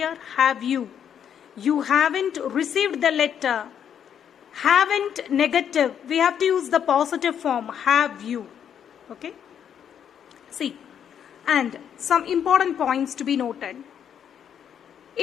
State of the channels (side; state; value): right; quieter; 8.7 dB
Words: here. Have you. You haven't received the letter. Haven't negative. We have to use the positive form. Have you. Okay. See. And some important points to be noted.